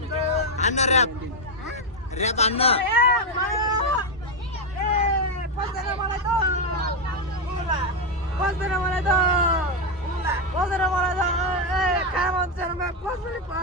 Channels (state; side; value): normal; both; correlation 0.04